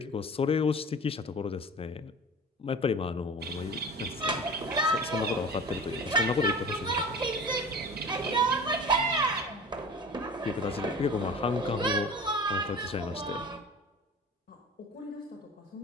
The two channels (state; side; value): normal; both; correlation 0.38